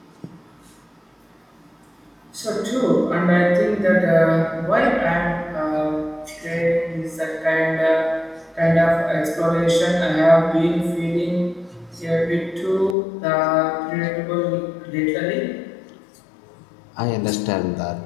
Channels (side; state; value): right; drops out; at 13.0 s